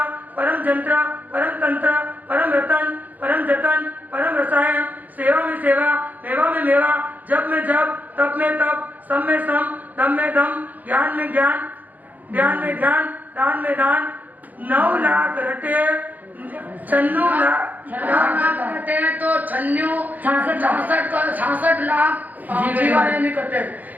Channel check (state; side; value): late; left; 0.081 ms